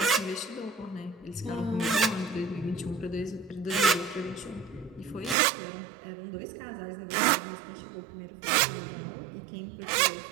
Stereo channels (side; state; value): left; drops out; at 5.4 s